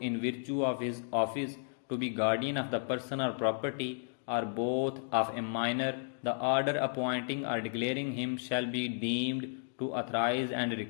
virtue of his office to be guardian of the person or property or both of a minor, the order appointing or declaring him shall be deemed to authorize and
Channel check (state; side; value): silent; right; digital silence